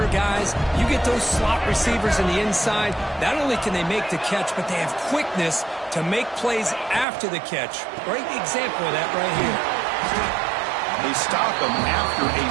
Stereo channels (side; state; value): left; drops out; at 7.1 s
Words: guys. You get those slot receivers in the inside, not only can they make the catch, but they have quickness to make plays after the catch. Great example of that right here. They stop him after a